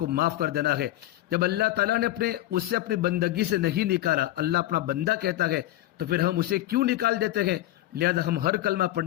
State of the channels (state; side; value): quieter; right; 15.1 dB